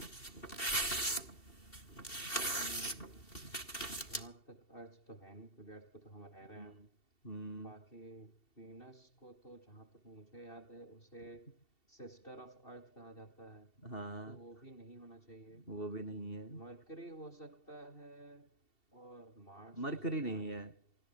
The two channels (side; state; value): right; late; 2.7 ms